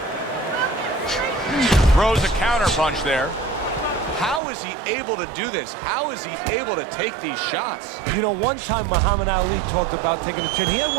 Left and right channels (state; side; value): drops out; left; at 4.4 s